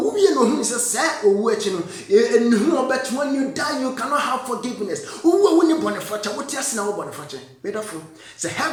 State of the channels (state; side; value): identical; both; correlation 1.00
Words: wie no hu se owu echi no enhu obet when you die you cannot have forgiveness wo ni bone facha wote ase na wo bone facha medafo se